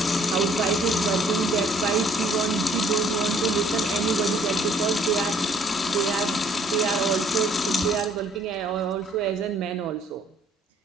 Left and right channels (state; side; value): normal; both; correlation 0.61